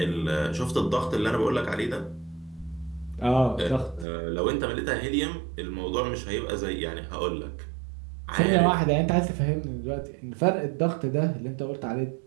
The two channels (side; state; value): left; drops out; at 4.0 s